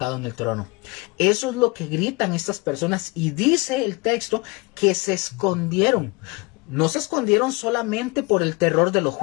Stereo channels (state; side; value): quieter; right; 26.5 dB